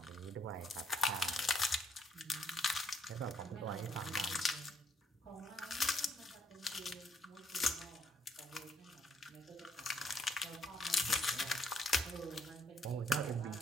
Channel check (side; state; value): both; normal; correlation 0.69